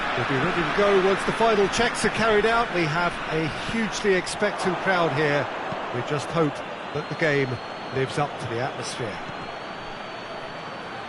We'll be ready to go once the final checks are carried out. We have a hugely expectant crowd here. We just hope that the game lives up to the atmosphere.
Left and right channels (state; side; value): identical; both; correlation 1.00